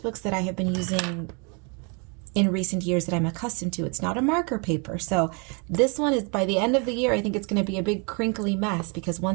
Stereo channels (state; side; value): quieter; left; 34.2 dB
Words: that I have been using in recent years that I'm accustomed to. It's not a marker paper. So this one is, by the end of the year, I think it's going to be a big crinkly mess, because